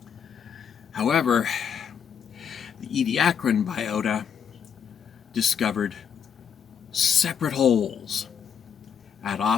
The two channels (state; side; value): quieter; right; 7.6 dB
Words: However, the Ediacaran biota discovered separate holes at